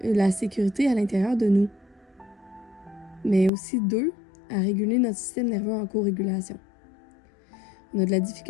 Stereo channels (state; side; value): drops out; right; at 3.5 s